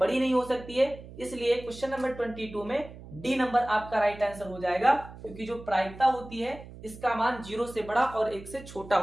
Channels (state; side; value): noise; right; hum, 16 dB below the sound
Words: नहीं हो सकती है, इसलिए क्वेश्चन नंबर 22 में डी नंबर आपका राइट आंसर हो जाएगा, क्योंकि जो प्रायिकता होती है इसका मान 0 से बड़ा और 1 से छोटा